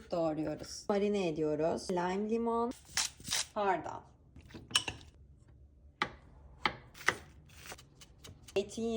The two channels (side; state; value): both; identical; correlation 1.00